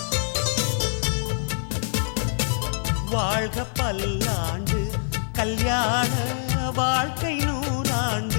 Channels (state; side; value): silent; right; digital silence